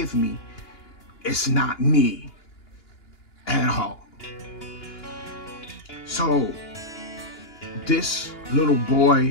me, it's not me at all. So this little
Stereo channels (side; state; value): right; late; 2.9 ms